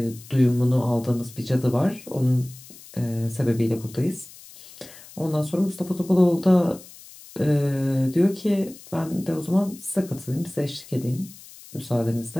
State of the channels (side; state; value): left; noise; hiss, 19 dB below the sound